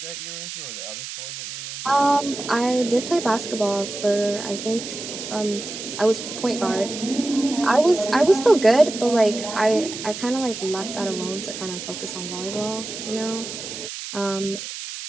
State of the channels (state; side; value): noise; right; hiss, 9 dB below the sound